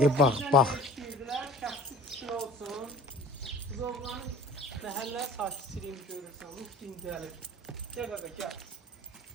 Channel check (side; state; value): both; normal; correlation 0.44